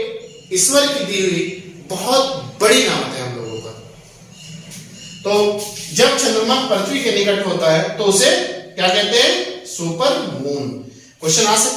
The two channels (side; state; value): both; identical; correlation 1.00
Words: ईश्वर की दी हुई बहुत बड़ी नामत है हम लोगों का। तो जब चंद्रमा पृथ्वी के निकट होता है तो उसे क्या कहते हैं? Super moon. क्वेश्चन आ